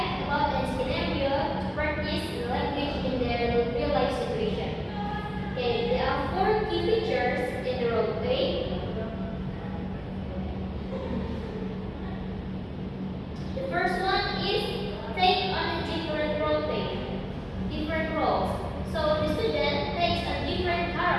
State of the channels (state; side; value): identical; both; correlation 1.00